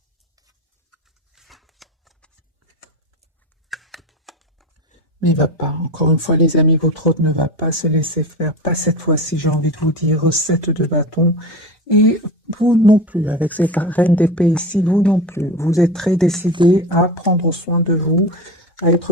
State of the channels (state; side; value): normal; both; correlation 0.27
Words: Mais il va pas. Encore une fois, les amis, votre hôte ne va pas se laisser faire. Pas cette fois-ci, j'ai envie de vous dire, recette de bâton. Et vous non plus, avec cette reine d'épée ici, vous non plus. Vous êtes très décidé à prendre soin de vous, à